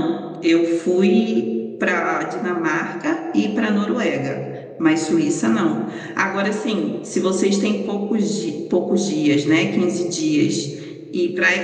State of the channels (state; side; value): identical; both; correlation 1.00